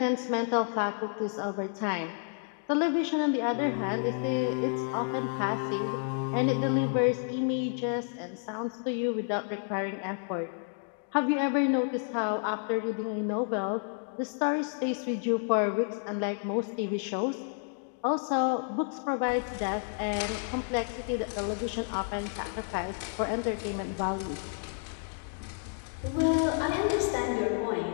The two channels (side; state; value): right; silent; 57 dB below the other